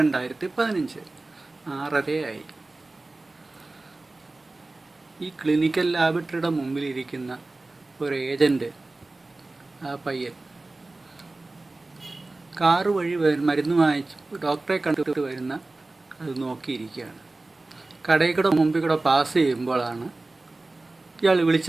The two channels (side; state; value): left; quieter; 3.1 dB